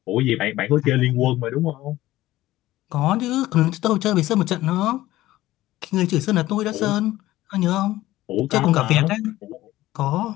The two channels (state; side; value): quieter; right; 16.0 dB